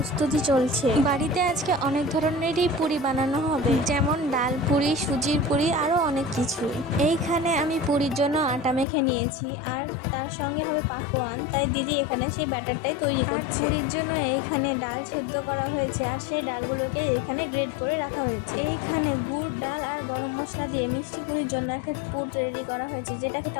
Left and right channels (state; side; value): drops out; right; at 8.8 s